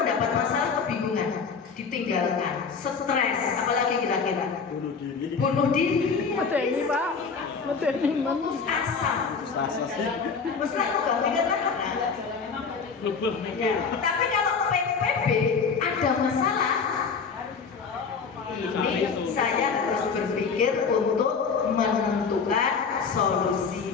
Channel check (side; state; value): right; quieter; 5.5 dB